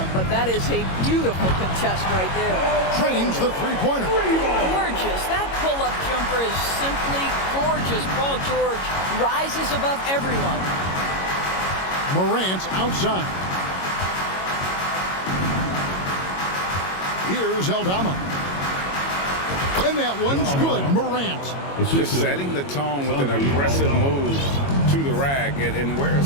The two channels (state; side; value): late; right; 22 ms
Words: but that is a beautiful contest right there. Trains the three-pointer. Gorgeous. That pull-up jumper is simply gorgeous. Paul George rises above everyone. Morant outside. Here's Aldama. And that one's good, Morant. Just setting the tone with an aggressive move to the rack. And